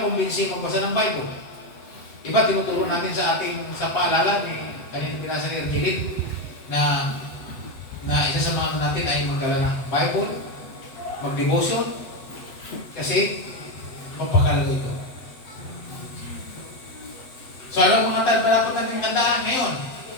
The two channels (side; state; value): right; late; 7.9 ms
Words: nakumbinsi magbasa ng Bible? Iba, tinuturo natin sa paalala ni kanina pinasa ni Argelin na isa sa mga natin ay magdala ng Bible, mag-devotion, kasi magpakalaga ito. So ano mga dapat natin tandaan ngayon?